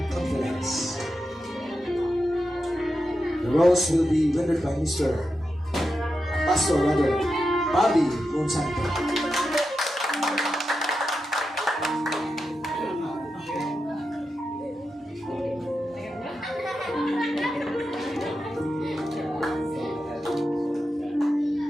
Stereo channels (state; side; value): normal; both; correlation 0.89